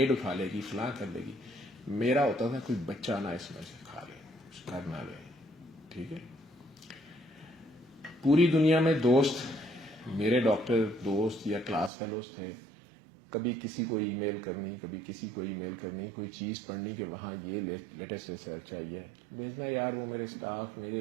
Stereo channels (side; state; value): left; drops out; at 11.9 s